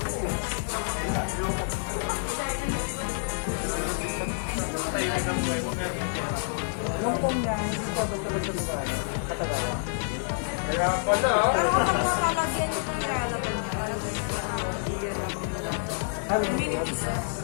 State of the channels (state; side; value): silent; right; digital silence